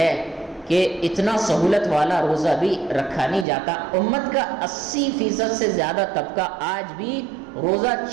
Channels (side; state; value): left; drops out; at 3.5 s